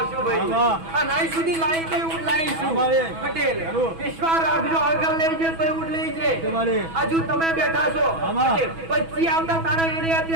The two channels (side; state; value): left; late; 6.1 ms